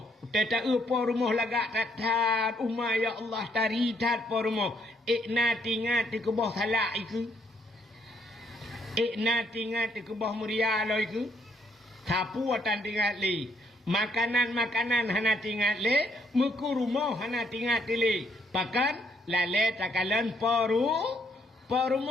Teta po rumah lagak tatat umma ya Allah tari tat po rumah. Ikna tingat di kebah salak iku. Ikna tingat di kebah muria lo iku. Sapu watan tingat li. Makanan-makanan hana tingat le, muku rumah hana tingat le. Pakan lale takalan po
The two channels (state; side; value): normal; both; correlation 0.70